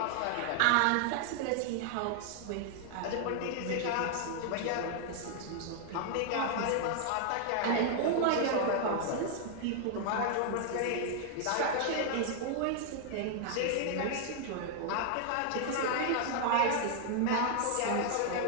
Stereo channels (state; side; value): different; both; correlation 0.00